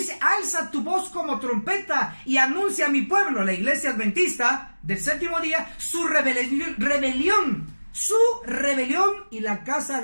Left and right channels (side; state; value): both; inverted; correlation -1.00